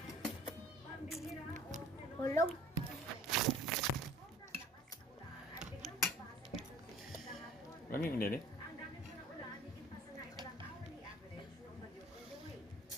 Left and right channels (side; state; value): both; normal; correlation 0.49